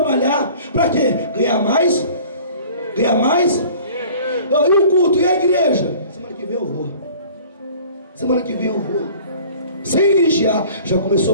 para quê? Ganhar mais? Ganhar mais? E o culto, e a igreja? Semana que vem eu vou. Semana que vem eu vou. Sem vigiar, já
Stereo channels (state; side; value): inverted; both; correlation -0.47